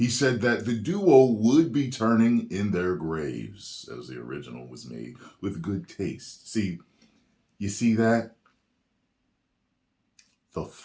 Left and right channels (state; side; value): identical; both; correlation 1.00